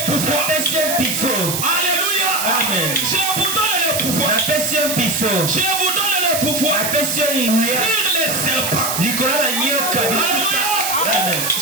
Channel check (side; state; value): right; noise; hiss, 2 dB below the sound